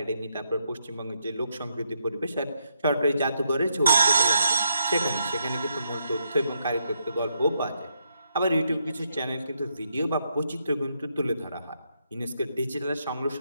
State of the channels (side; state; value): both; inverted; correlation -0.78